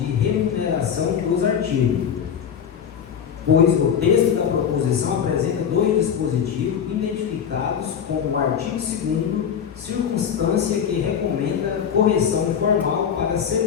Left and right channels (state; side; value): quieter; right; 7.9 dB